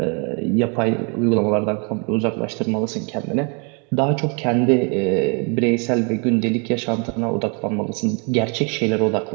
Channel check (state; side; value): quieter; left; 35.2 dB